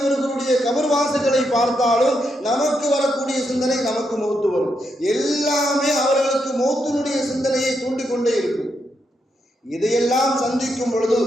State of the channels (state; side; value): normal; both; correlation 0.81